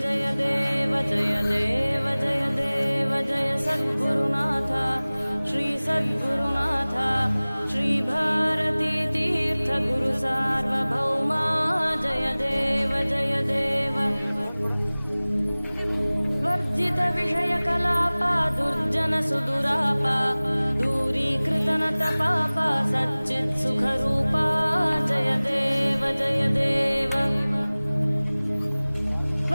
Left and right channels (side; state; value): both; inverted; correlation -1.00